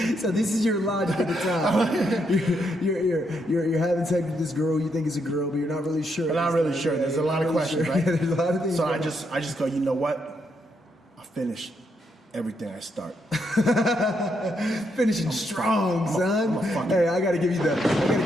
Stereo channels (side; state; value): both; normal; correlation 0.78